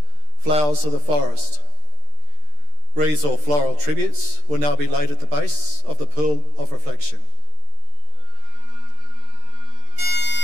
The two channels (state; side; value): late; left; 13 ms